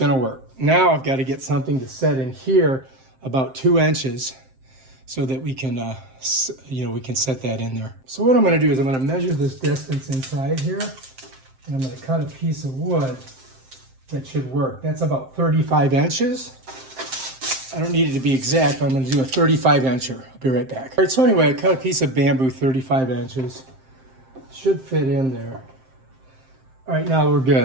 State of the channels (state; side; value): late; left; 7.6 ms